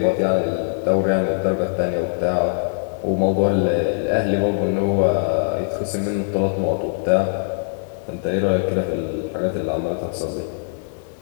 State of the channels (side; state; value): right; silent; 61 dB below the other